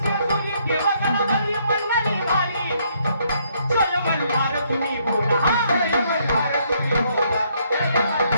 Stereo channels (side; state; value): both; inverted; correlation -0.70